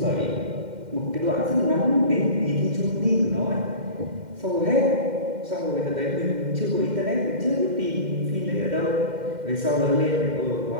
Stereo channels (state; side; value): late; left; 2.1 ms